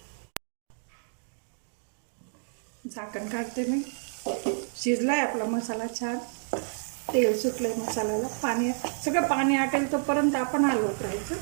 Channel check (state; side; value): silent; left; digital silence